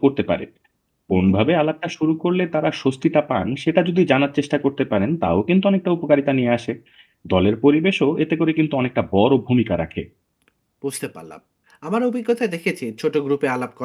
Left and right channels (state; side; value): identical; both; correlation 1.00